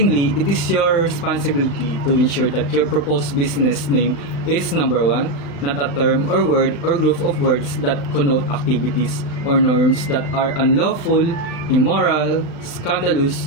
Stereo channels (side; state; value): right; late; 35 ms